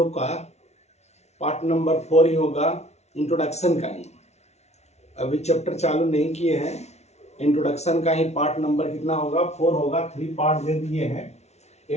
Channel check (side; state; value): right; late; 0.32 ms